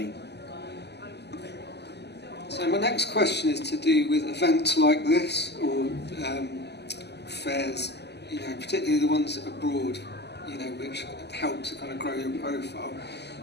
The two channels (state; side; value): late; right; 0.49 ms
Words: So my next question is to do with events like this, or fairs, you know, particularly the ones abroad, you know, which help to kind of grow your profile.